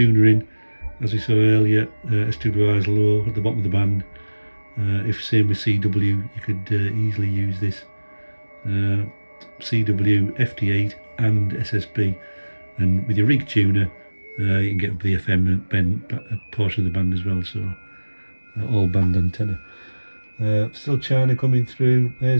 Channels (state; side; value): inverted; both; correlation -1.00